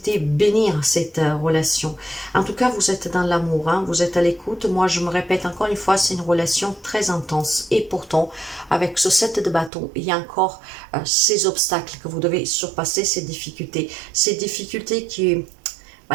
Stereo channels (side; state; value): left; drops out; at 9.7 s